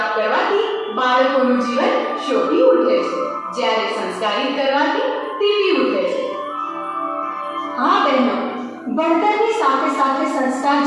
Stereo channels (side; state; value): both; identical; correlation 1.00